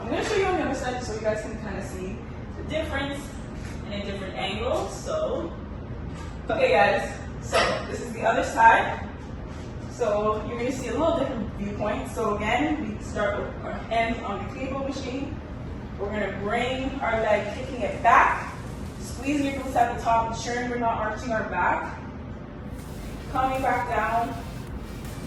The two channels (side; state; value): both; identical; correlation 1.00